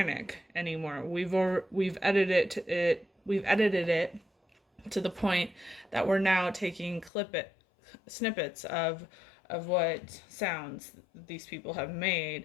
anymore. We've edited it to the point that we're now taking snippets of what sounds these people have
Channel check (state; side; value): drops out; right; at 7.1 s